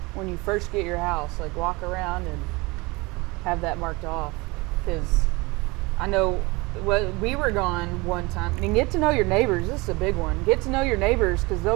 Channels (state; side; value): quieter; left; 24.6 dB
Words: when you first get your house. Like walk around and have that marked off, because I know. Well, we were gone one time, and get to know your neighbors. This is a big one. Get to know your neighbors, because they'll